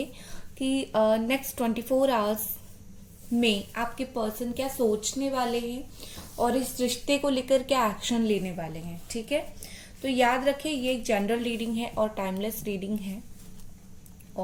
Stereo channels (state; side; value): identical; both; correlation 1.00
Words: कि नेक्स्ट 24 आवर्स में आपके पर्सन क्या सोचने वाले हैं और इस रिश्ते को लेकर क्या एक्शन लेने वाले हैं। ठीक है, तो याद रखें ये एक जनरल रीडिंग है और टाइमलेस रीडिंग है